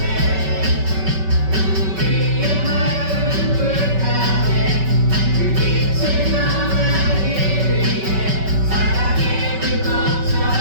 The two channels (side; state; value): left; late; 5.2 ms